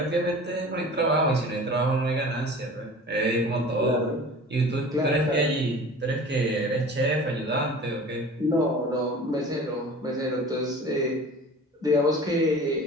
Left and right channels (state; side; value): normal; both; correlation 0.41